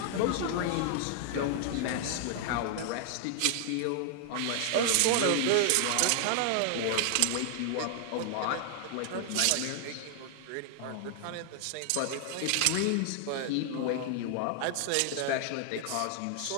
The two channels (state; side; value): different; both; correlation 0.00